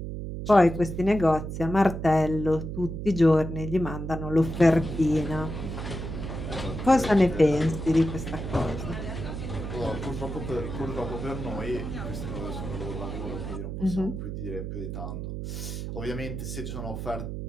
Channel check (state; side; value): noise; right; hum, 6 dB below the sound